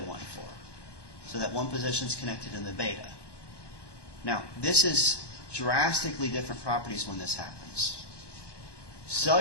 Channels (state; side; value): late; right; 1.1 ms